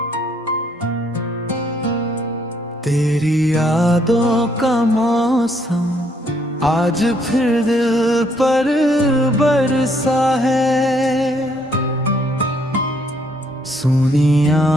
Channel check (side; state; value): both; normal; correlation 0.69